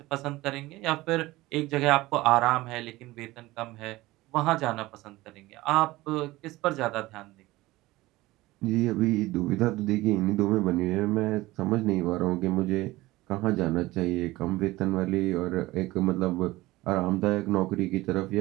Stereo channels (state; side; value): quieter; left; 18.9 dB